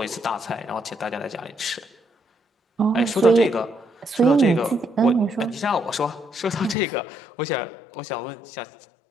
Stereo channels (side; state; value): right; drops out; at 6.8 s